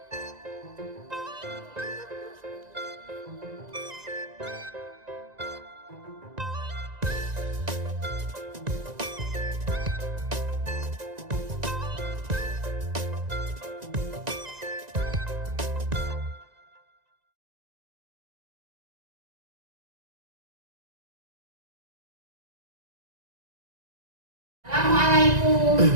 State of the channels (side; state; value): left; late; 1.9 ms